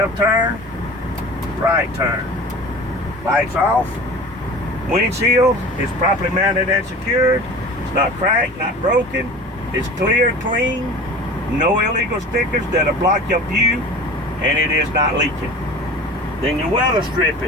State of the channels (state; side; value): normal; both; correlation 0.38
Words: turn, right turn. Lights off. Windshield is properly mounted and secured. It's not cracked, not broken. It's clear, clean. No illegal stickers that'll block your view, and it is not leaking. Then your weather